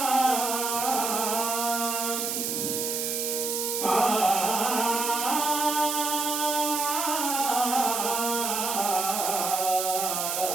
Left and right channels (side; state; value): right; noise; hiss, 1 dB below the sound